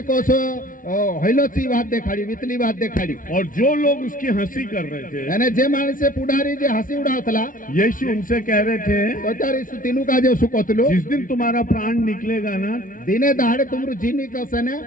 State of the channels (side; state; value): right; late; 0.39 ms